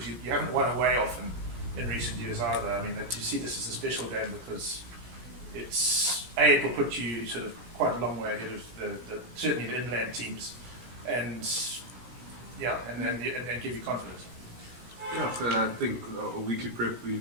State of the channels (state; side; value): late; left; 17 ms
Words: you haven't won away often in recent years either? I mean, do you see this as a special game because it will put you sort of quite a long way ahead of certainly the inland teams, and give you confidence? Yeah, I think a weekly prep,